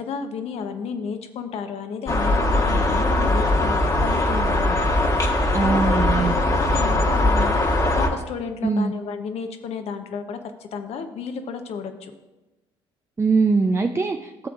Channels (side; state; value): both; normal; correlation 0.69